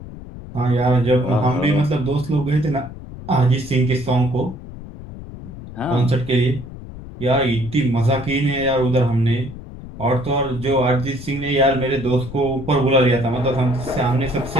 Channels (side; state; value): left; noise; rumble, 13 dB below the sound